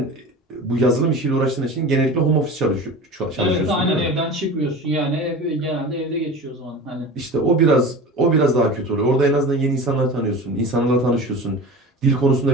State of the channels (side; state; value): both; normal; correlation 0.34